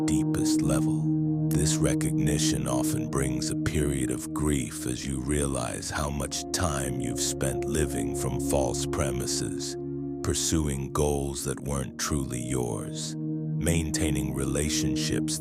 deepest level. This recognition often brings a period of grief as you realize how much time you've spent living from false premises, pursuing goals that weren't truly yours, maintaining relationships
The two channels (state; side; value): identical; both; correlation 1.00